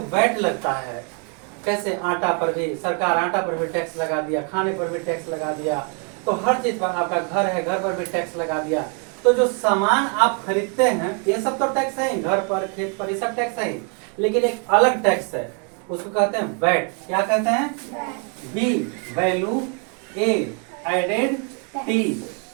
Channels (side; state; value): left; quieter; 39.2 dB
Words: वैट लगता है। कैसे? आटा पर भी सरकार आटा पर भी टैक्स लगा दिया, खाने पर भी टैक्स लगा दिया, तो हर चीज पर, आपका घर है घर पर भी टैक्स लगा दिया। तो जो सामान आप खरीदते हैं ये सब तो टैक्स है ही, घर पर खेत पर ये सब टैक्स है ही, लेकिन एक अलग टैक्स है, उसको कहते हैं वैट। क्या कहते हैं? बी वैल्यू, ए एडेड, टी